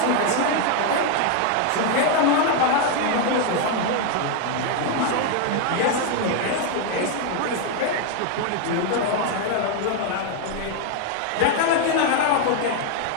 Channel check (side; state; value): both; different; correlation 0.01